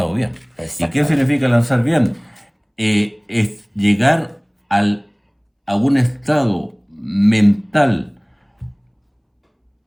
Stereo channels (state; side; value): identical; both; correlation 1.00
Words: bien. ¿Y qué exactamente. significa lanzar bien? Es llegar a un estado mental